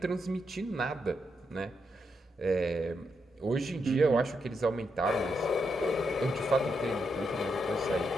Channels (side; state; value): both; normal; correlation 0.82